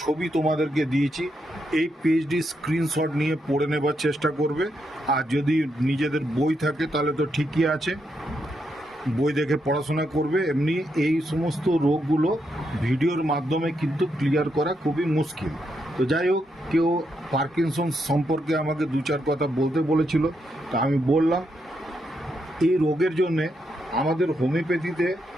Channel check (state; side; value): normal; both; correlation 0.81